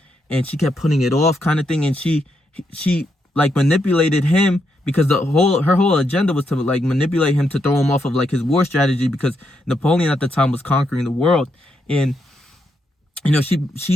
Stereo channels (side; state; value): both; normal; correlation 0.80